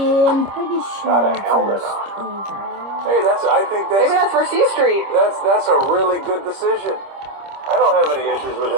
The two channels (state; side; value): late; left; 26 ms